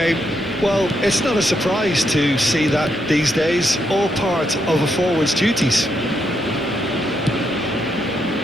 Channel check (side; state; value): both; normal; correlation 0.79